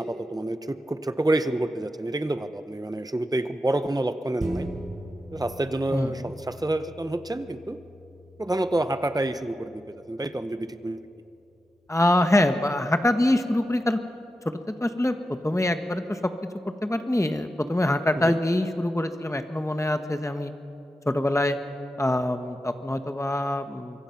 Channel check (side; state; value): both; normal; correlation 0.89